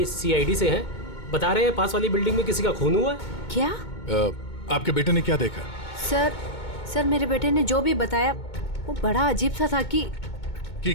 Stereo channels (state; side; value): late; right; 2.2 ms